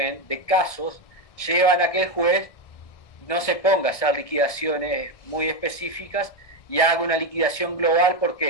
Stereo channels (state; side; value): late; right; 1.6 ms